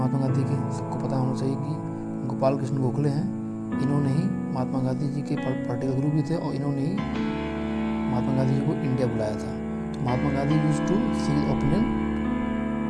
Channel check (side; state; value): both; identical; correlation 1.00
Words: गांधी के? सबको पता होना चाहिए कि गोपाल कृष्ण गोखले हैं। इन्होंने ही महात्मा गांधी जी के पॉलिटिकल गुरु भी थे और इन्होंने ही महात्मा गांधी जी को इंडिया बुलाया था। तो Mahatma Gandhi used to seek opinion,